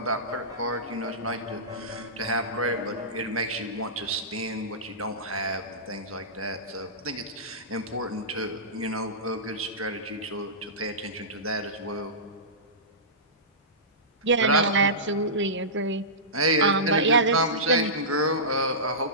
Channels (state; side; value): normal; both; correlation -0.19